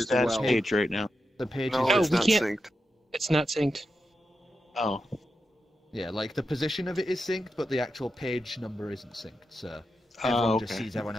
stats well. page right now. The page No, is it's we not can't- synced. It's not synced. Oh. yeah, like the position of it is synced, but the actual page number isn't synced. So everyone just sees everyone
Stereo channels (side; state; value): both; normal; correlation 0.88